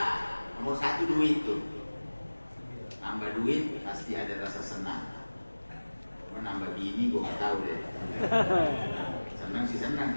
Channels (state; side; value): inverted; both; correlation -1.00